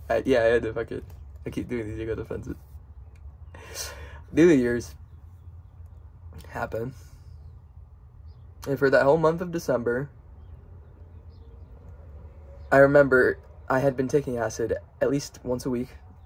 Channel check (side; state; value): both; identical; correlation 1.00